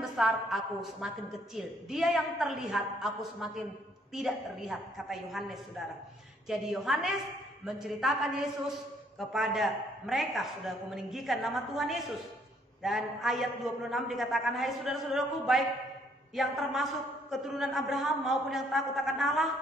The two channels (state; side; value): normal; both; correlation 0.67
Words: besar, aku semakin kecil. Dia yang terlihat, aku semakin tidak terlihat, kata Yohanes, saudara. Jadi Yohanes menceritakan Yesus kepada mereka, saudaraku, meninggikan nama Tuhan Yesus. Dan ayat 26 dikatakan, hai saudara-saudaraku, baik yang termasuk keturunan Abraham maupun yang takut akan